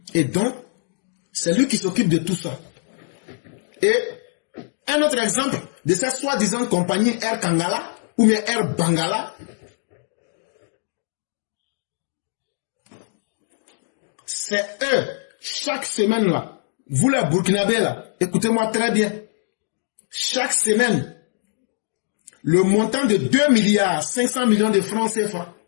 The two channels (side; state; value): right; silent; digital silence